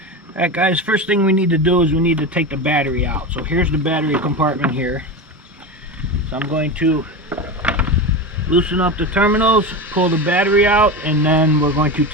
Alright guys, first thing we need to do is we need to take the battery out. So here's the battery compartment here. So I'm going to loosen up the terminals, pull the battery out, and then we're going to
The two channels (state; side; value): normal; both; correlation 0.22